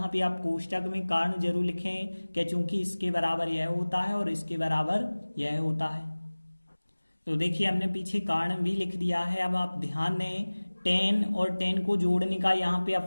पे आप कोष्टक में कारण जरूर लिखें कि चूंकि इसके बराबर यह होता है और इसके बराबर यह होता है। तो देखिए हमने पीछे कारण भी लिख दिया है। अब आप ध्यान दें 10 और 10 को जोड़ने का यहाँ पे अब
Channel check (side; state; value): both; inverted; correlation -1.00